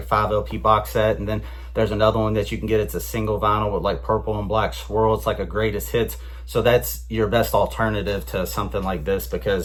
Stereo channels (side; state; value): both; identical; correlation 1.00